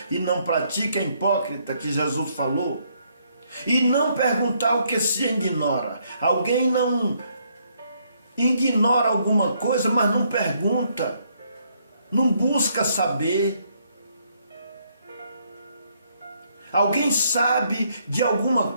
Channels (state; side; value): inverted; both; correlation -0.71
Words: e não pratica é hipócrita, que Jesus falou. E não perguntar o que se ignora. Alguém não ignora alguma coisa, mas não pergunta, não busca saber. Alguém sabe de alguma